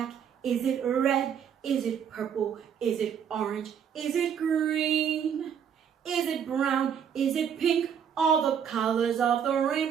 Is it red? Is it purple? Is it orange? Is it green? Is it brown? Is it pink? All the colors of the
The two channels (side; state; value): left; quieter; 8.0 dB